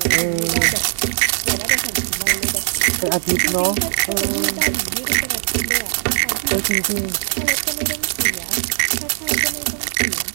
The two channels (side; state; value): left; silent; 66 dB below the other